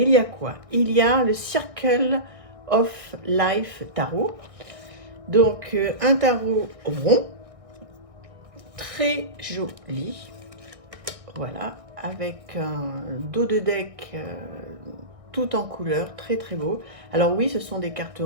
y a quoi? Il y a le Circle of Life tarot. Donc, un tarot rond, très joli. Voilà, avec un dos de deck tout en couleur, très très beau. Alors oui, ce sont des cartes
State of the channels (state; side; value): late; left; 1.6 ms